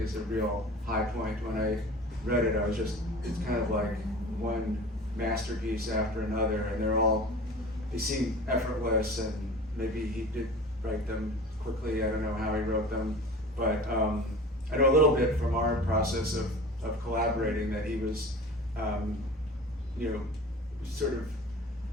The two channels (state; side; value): normal; both; correlation 0.38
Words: is a real high point. When I read it, it's kind of like one masterpiece after another, and they seem effortless, and maybe he did write them quickly. I don't know how he wrote them, but I know a little bit from our process of collaborating that he was, sort of